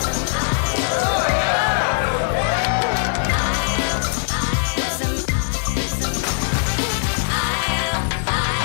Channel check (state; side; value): silent; right; 65 dB below the other